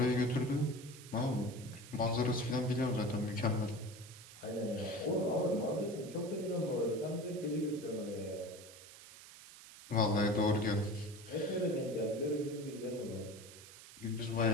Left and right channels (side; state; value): right; noise; hiss, 17 dB below the sound